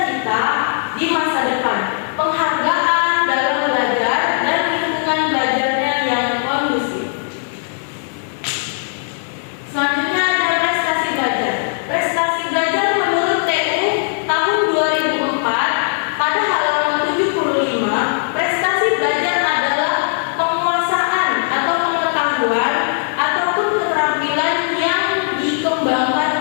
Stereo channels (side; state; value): right; silent; 66 dB below the other